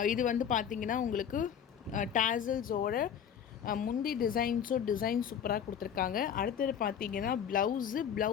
இது வந்து பார்த்திங்கன்னா உங்களுக்கு டேசல்ஸோட முந்தி டிசைன் சூப்பராக கொடுத்துருக்காங்க. அடுத்தது பார்த்தீங்கன்னா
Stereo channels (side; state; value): right; quieter; 8.5 dB